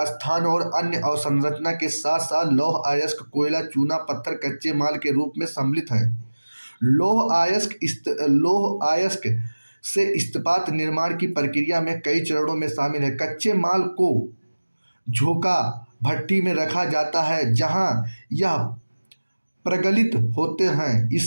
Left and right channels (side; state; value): both; inverted; correlation -1.00